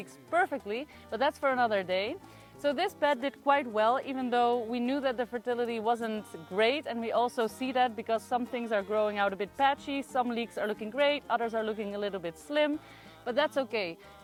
perfectly, but that's for another day. So this bed did quite well, even though we knew that the fertility wasn't great, and we also see that because some things are growing out a bit patchy, some leeks are looking great, others are looking a little bit slim, but that's okay.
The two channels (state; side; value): identical; both; correlation 1.00